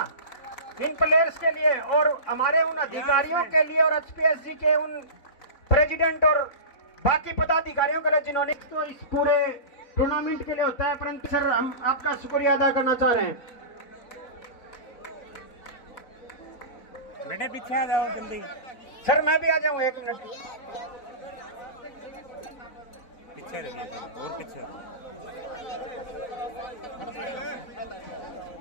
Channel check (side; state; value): right; late; 4.0 ms